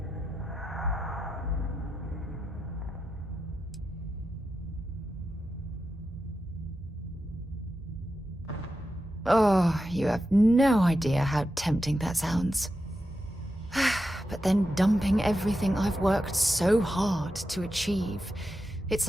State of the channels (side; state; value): both; normal; correlation 0.89